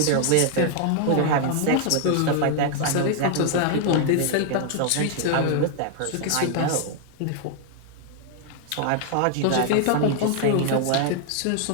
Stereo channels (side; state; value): both; different; correlation 0.00